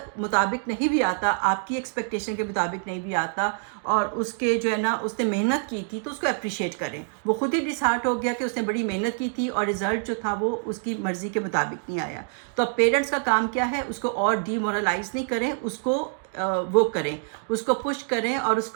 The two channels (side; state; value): left; silent; 59 dB below the other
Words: مطابق نہیں بھی آتا، آپ کی ایکسپیکٹیشن کے مطابق نہیں بھی آتا، اور اس کے جو ہے نا اس نے محنت کی تھی، تو اس کو اپریشیٹ کریں. وہ خود ہی ڈسہارٹ ہو گیا کہ اس نے بڑی محنت کی تھی اور رزلٹ جو تھا وہ اس کی مرضی کے مطابق نہیں آیا. تو اب پیرنٹس کا کام کیا ہے، اس کو اور ڈی مورلائز نہیں کریں، اس کو وہ کریں، اس کو پش کریں، اور اس